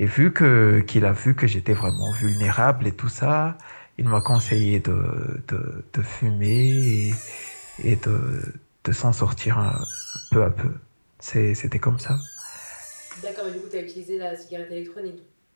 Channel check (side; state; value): both; inverted; correlation -1.00